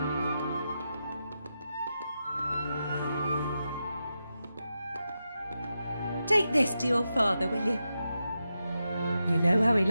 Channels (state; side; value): inverted; both; correlation -0.88